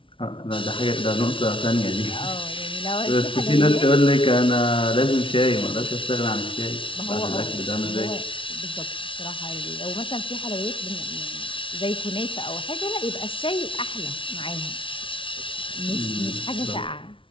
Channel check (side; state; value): right; late; 0.25 ms